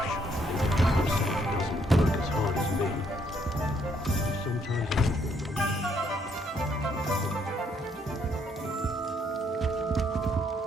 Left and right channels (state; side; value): normal; both; correlation 0.70